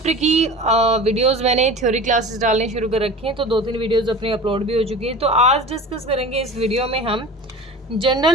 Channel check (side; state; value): both; normal; correlation 0.36